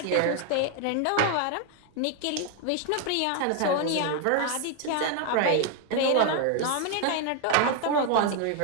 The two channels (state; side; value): different; both; correlation 0.00